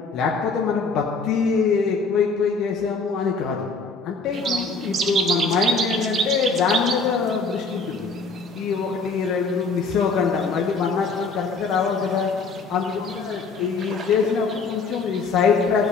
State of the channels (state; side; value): quieter; right; 4.2 dB